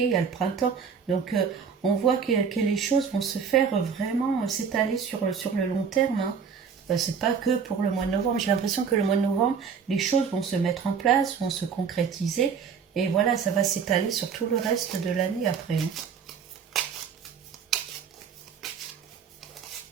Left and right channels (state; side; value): quieter; left; 6.5 dB